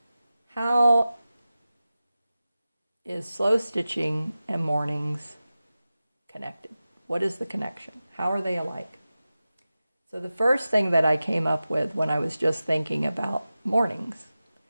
How is slow stitching and mornings connected? What is the connection? How are they alike? So the first thing that I came up with when I was just thinking about mornings,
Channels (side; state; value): both; inverted; correlation -0.95